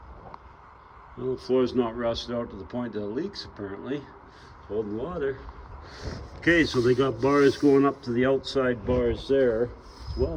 Well, the floor's not rusted out to the point that it leaks apparently. It's holding water. Okay, so they got bars going up to the outside bars there. It's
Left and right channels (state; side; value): identical; both; correlation 1.00